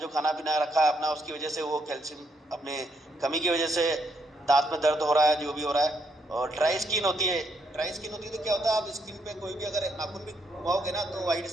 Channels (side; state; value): both; normal; correlation 0.75